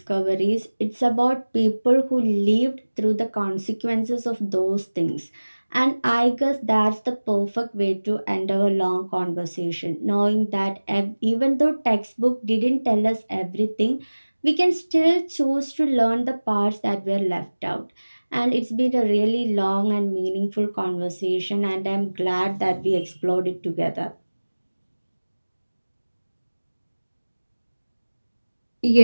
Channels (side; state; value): both; inverted; correlation -1.00